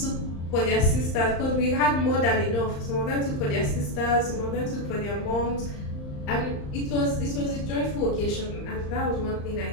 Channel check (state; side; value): late; right; 35 ms